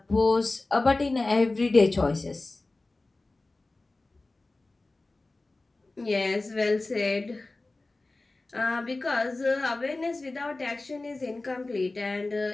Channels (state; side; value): quieter; right; 3.1 dB